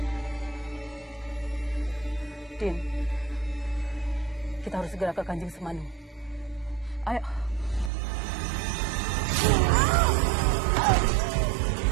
Din, kita harus segera ke Kanjeng Semanu. Ayo.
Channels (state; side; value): drops out; left; at 7.9 s